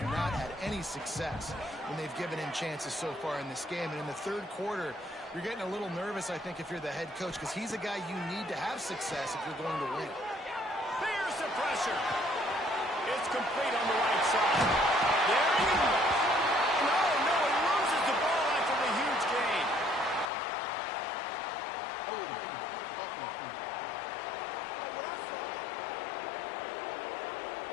not had any success when they've given him chances so far in this game. And in the third quarter, you're getting a little nervous, I think, if you're the head coach, because he's a guy you need to have success if you're going to win. Here's the pressure. It's complete on the right side. There he goes. No, he loses the ball after the huge gain.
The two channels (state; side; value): drops out; right; at 20.3 s